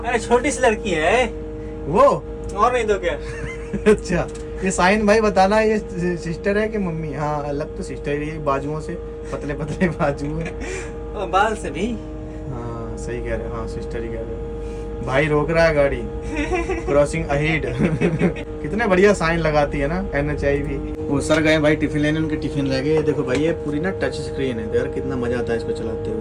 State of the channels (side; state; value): both; identical; correlation 1.00